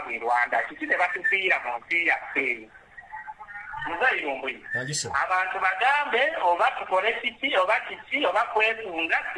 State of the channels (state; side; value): identical; both; correlation 1.00